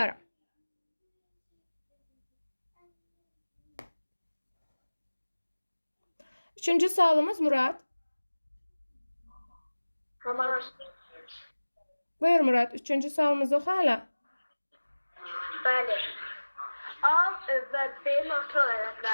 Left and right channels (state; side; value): inverted; both; correlation -1.00